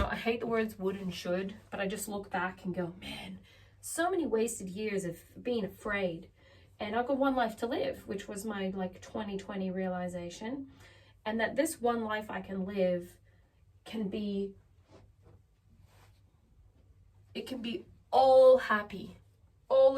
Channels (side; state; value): both; identical; correlation 1.00